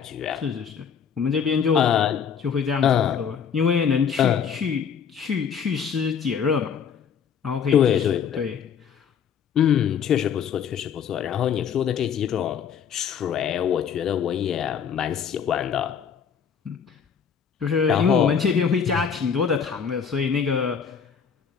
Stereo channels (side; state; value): right; quieter; 7.3 dB